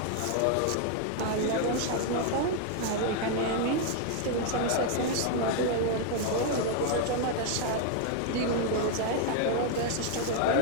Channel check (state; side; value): different; both; correlation 0.00